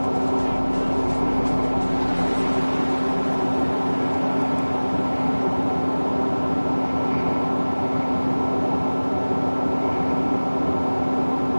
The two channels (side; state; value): both; inverted; correlation -1.00